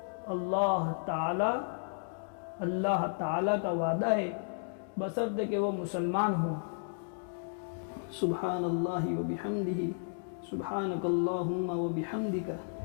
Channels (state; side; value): silent; right; digital silence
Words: اللہ تعالی کا وعدہ ہے، بشرطے کہ وہ مسلمان ہو۔ سبحان اللہ و بحمدہ، سبحانک اللہم و بحمدک۔